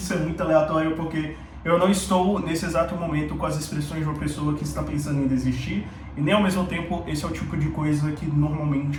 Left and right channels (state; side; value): identical; both; correlation 1.00